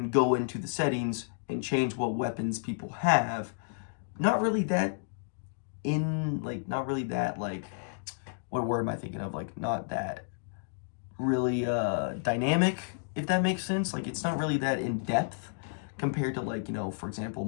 go into the settings and change what weapons people have. Not really that what word am I thinking of? Like, not that really dynamic, if that makes sense. Like, it's not really that in depth compared to, like, for example,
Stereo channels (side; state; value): right; silent; digital silence